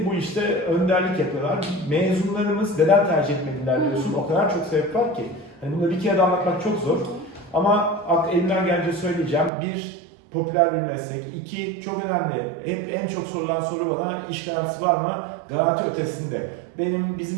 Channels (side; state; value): left; drops out; at 9.5 s